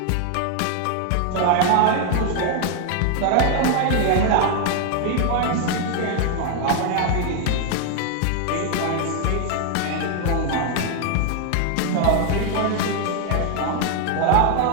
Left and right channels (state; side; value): different; both; correlation 0.00